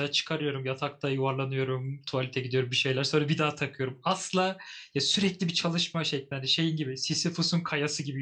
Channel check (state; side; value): identical; both; correlation 1.00